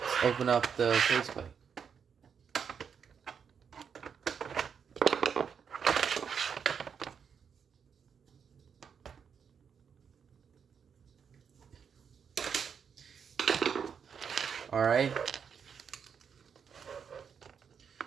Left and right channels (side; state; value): left; quieter; 6.9 dB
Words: Open up the faceplate. Alright.